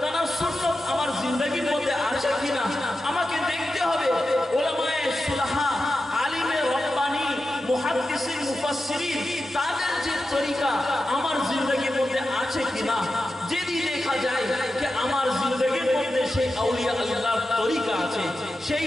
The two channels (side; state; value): both; normal; correlation 0.91